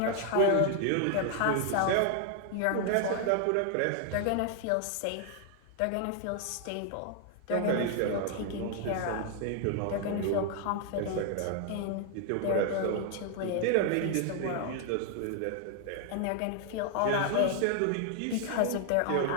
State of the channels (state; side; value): different; both; correlation 0.00